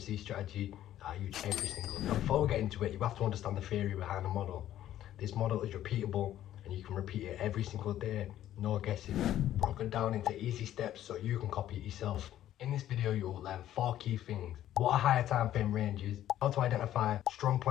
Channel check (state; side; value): quieter; right; 12.3 dB